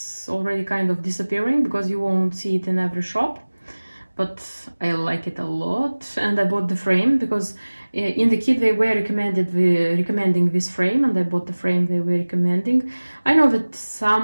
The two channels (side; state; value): both; inverted; correlation -1.00